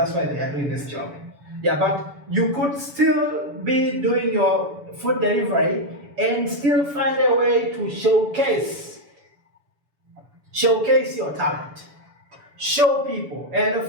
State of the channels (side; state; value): left; late; 7.0 ms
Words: why they are doing this job. Yeah, but you could still be doing your food delivery and still find a way to showcase your talent. Show people. And of